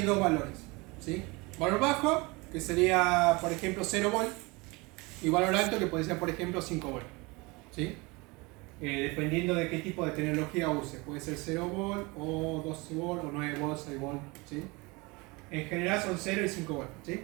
dos valores, ¿sí? Valor bajo, que sería por ejemplo 0 volt, y valor alto, que puede ser por ejemplo 5 volt, ¿sí? Dependiendo de qué tipo de tecnología use, puede ser 0 volt, o 12 volt, o 9 volt, 6 volt, ¿sí? En general son 0 y 5 volt, ¿sí?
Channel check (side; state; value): left; quieter; 25.6 dB